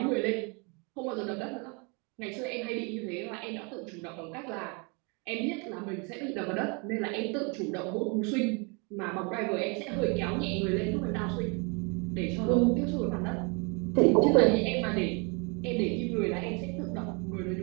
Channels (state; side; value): quieter; left; 32.7 dB